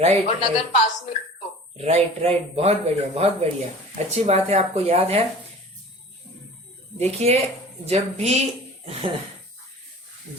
राइट, और नगर पास में तो राइट, बहुत बढ़िया, बहुत बढ़िया, अच्छी बात है, आपको याद है। देखिए,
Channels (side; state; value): both; normal; correlation 0.42